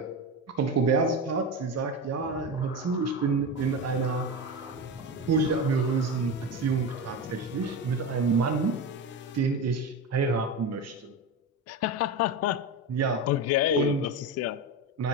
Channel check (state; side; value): normal; both; correlation 0.20